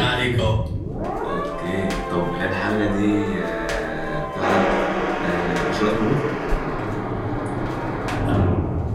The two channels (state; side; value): identical; both; correlation 1.00